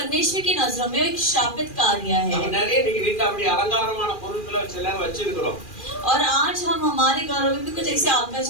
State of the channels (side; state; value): right; late; 2.4 ms